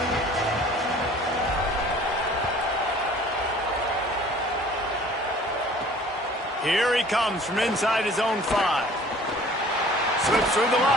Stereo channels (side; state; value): both; normal; correlation 0.50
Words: Here he comes from inside his own 5. Slips through the